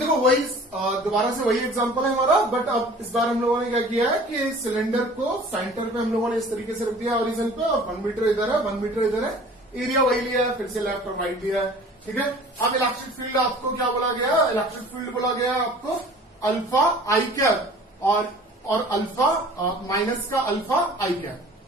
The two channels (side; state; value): both; normal; correlation 0.46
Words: वही दोबारा से वही एग्जांपल है हमारा, बट अब इस बार हम लोगों ने क्या किया है कि सिलेंडर को सेंटर पे हम लोगों ने इस तरीके से रख दिया ओरिजिन पे, और 1 मीटर इधर है 1 मीटर इधर है, एरिया वही लिया है, फिर से लेफ्ट और राइट लिया है। ठीक है। अब इलेक्ट्रिक फील्ड आपको क्या बोला गया, इलेक्ट्रिक फील्ड बोला गया आपको अल्फा आई कैप और अल्फा माइनस का अल्फा आई कैप।